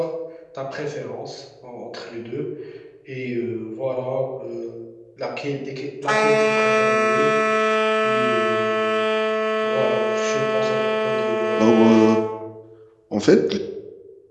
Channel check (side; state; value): both; identical; correlation 1.00